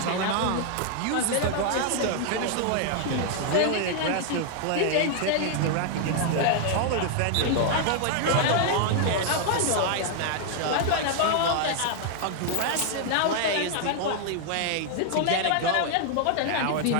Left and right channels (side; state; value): both; different; correlation 0.00